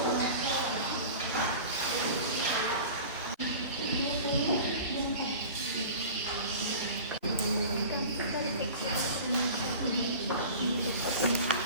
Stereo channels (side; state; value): both; inverted; correlation -0.37